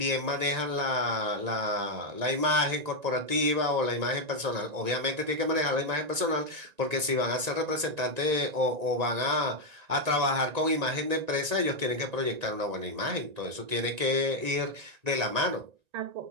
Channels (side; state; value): left; late; 1.9 ms